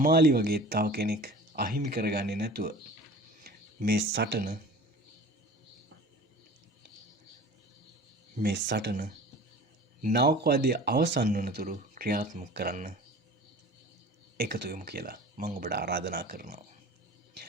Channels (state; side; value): normal; both; correlation 0.42